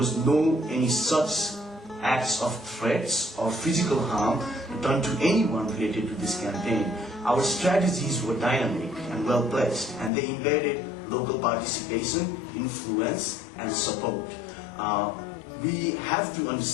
no any such acts of threats or physical harm done to anyone related to this campaign. Our strategies were dynamic and well placed, and they embedded local participation, influence, and support. We have to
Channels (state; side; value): drops out; right; at 10.1 s